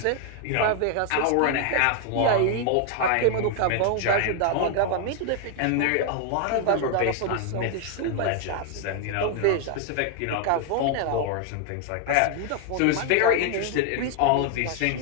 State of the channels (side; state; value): both; different; correlation 0.00